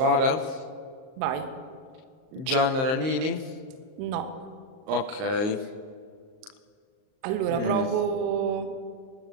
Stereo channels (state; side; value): late; left; 38 ms